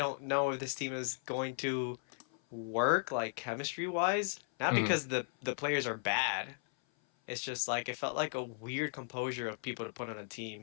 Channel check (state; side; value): silent; right; 54 dB below the other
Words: know if this team is going to work like chemistry wise. Not Mhm. because the players are bad. It's just like it felt like a weird composure of people to put on a